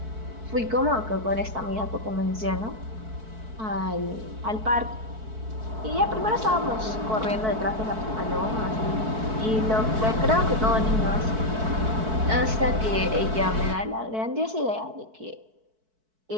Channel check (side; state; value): left; late; 4.6 ms